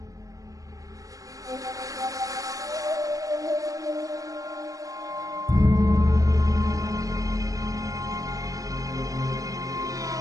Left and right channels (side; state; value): left; late; 0.17 ms